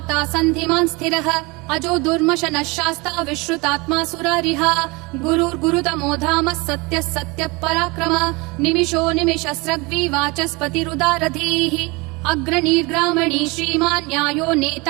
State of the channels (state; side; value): quieter; left; 25.9 dB